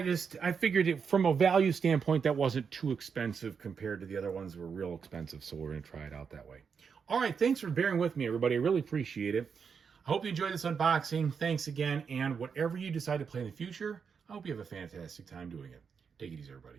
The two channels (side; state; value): left; quieter; 6.2 dB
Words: I figured it from a value standpoint, that wasn't too expensive compared to the other ones that were real expensive. So we're going to try it out that way. All right. Thanks for bearing with me, everybody. I really appreciate it. I hope you enjoyed this unboxing. Thanks again. And whatever you decide to play in the future, I hope you have a fantastic time doing it. Take it easy,